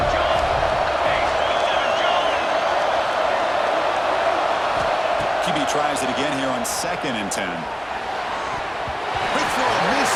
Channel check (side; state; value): both; identical; correlation 1.00